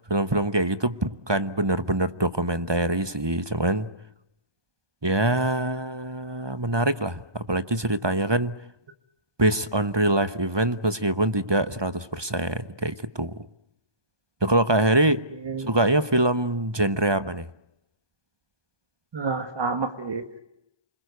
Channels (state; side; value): late; left; 1.2 ms